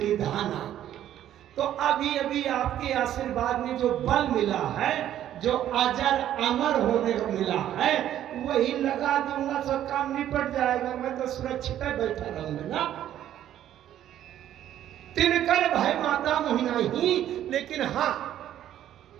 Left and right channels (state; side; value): quieter; left; 11.6 dB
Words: तो अभी अभी आपके आशीर्वाद में जो बल मिला है, जो अजर अमर होने को मिला है, वही लगा दूंगा, सब काम निपट जाएगा, मैं तो सुरक्षित बैठा रहूंगा ना। तिनकर भय माता मोहि नाही। लेकिन हाँ,